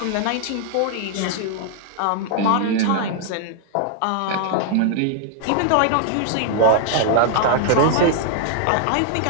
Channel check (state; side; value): different; both; correlation 0.00